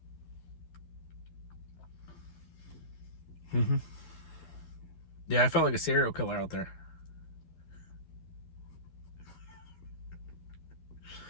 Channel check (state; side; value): late; right; 12 ms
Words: Mm-hmm. Yeah, I felt like a serial killer out there.